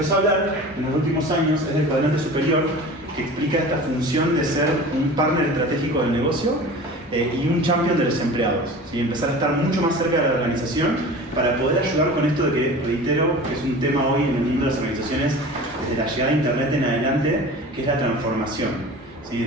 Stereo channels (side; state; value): both; normal; correlation 0.38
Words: a hablar en los últimos años es del cuadrante superior, que explica esta función de ser un partner estratégico del negocio y un champion de los empleados, ¿sí? Empezar a estar mucho más cerca de la organización para poder ayudar con esto de que, reitero, que es un tema hoy en el mundo de las organizaciones desde la llegada de Internet en adelante, que es la transformación. ¿Sí?